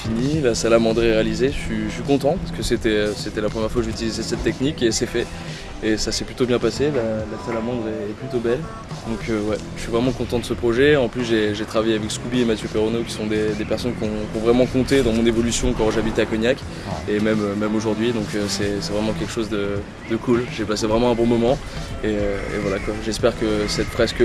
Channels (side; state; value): both; identical; correlation 1.00